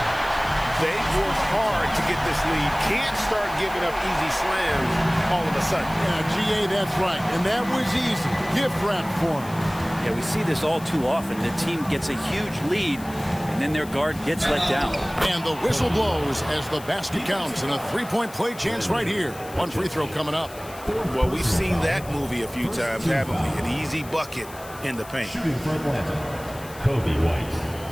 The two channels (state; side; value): noise; left; hiss, 18 dB below the sound